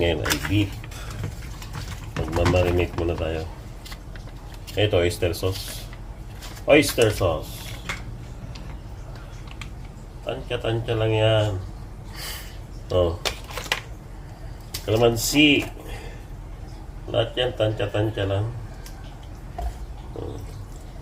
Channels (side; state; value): both; identical; correlation 1.00